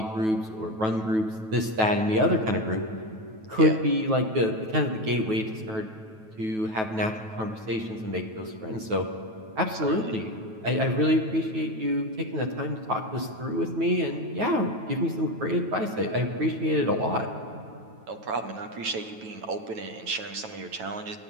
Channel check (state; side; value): late; left; 9.2 ms